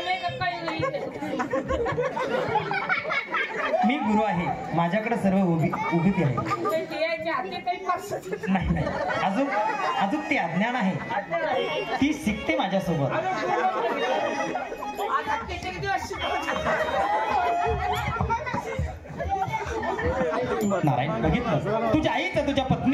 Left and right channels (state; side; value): identical; both; correlation 1.00